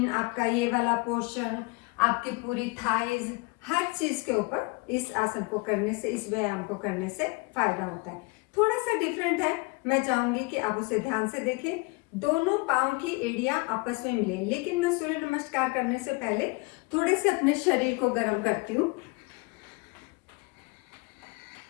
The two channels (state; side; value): quieter; right; 28.4 dB